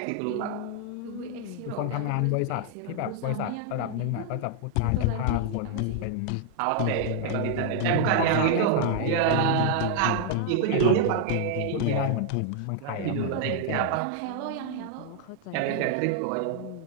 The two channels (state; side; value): different; both; correlation 0.00